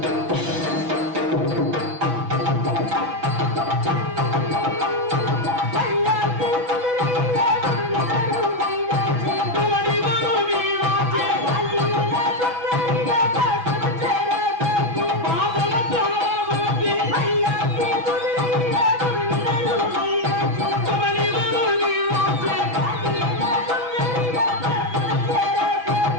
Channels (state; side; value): late; left; 6.1 ms